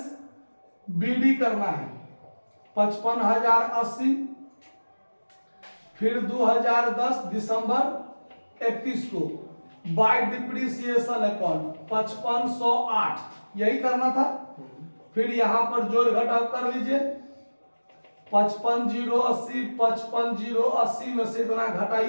बीडी करना है 55,080। फिर 2010 दिसंबर 31 को बाय डिप्रिसिएशन अकाउंट 5508 यही करना था। फिर यहाँ पर जोड़ घटाव कर लीजिए 55,080, 55,080 में से इतना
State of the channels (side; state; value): both; inverted; correlation -1.00